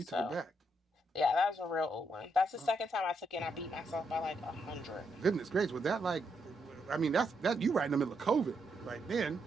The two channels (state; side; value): normal; both; correlation 0.79